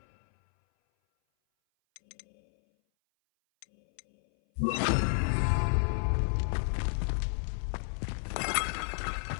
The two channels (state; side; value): silent; right; 57 dB below the other